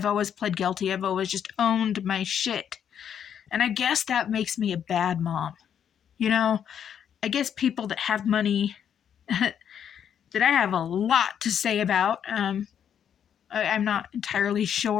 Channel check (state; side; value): quieter; right; 8.7 dB